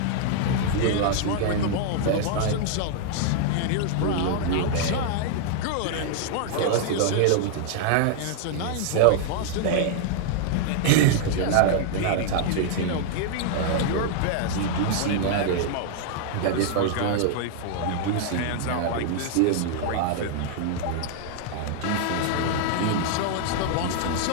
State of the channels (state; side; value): different; both; correlation 0.00